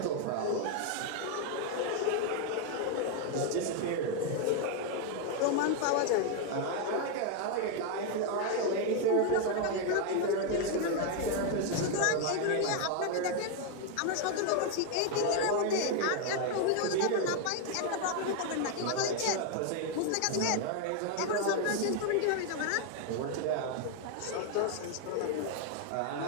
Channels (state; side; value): different; both; correlation 0.01